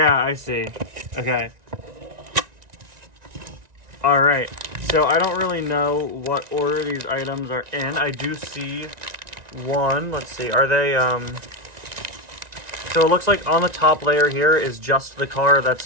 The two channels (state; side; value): late; left; 1.9 ms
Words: I see. Okay. All right. So I don't really know what order these items are in. I do see one. Let's see. Are they So it looks like on the top layer here is just the car